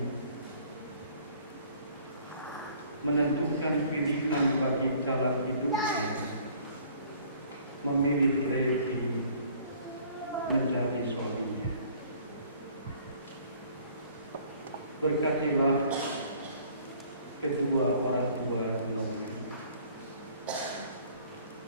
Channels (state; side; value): inverted; both; correlation -0.55